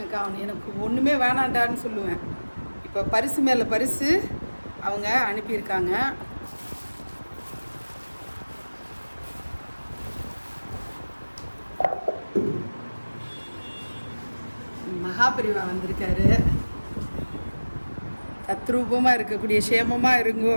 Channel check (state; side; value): inverted; both; correlation -1.00